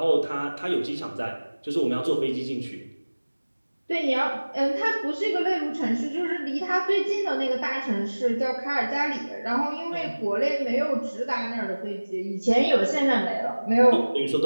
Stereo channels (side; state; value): both; inverted; correlation -1.00